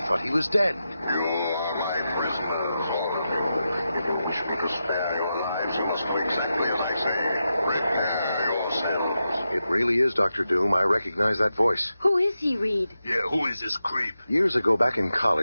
thought he was dead. You are my prisoners, all of you. If you wish me to spare your lives, you must do exactly as I say. Prepare yourselves. It really is Dr. Doom. I recognize that voice. Who is he, Reed? Yeah, who is this creep? Years ago, back in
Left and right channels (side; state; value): both; inverted; correlation -0.89